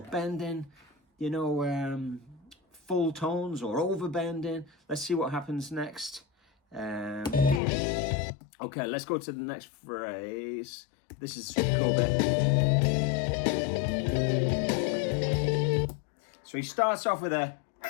bending, you know, full tones or overbending. Let's see what happens next. Okay, let's go to the next phrase. This is a super cool bit. So he starts off with a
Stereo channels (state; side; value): drops out; right; at 7.6 s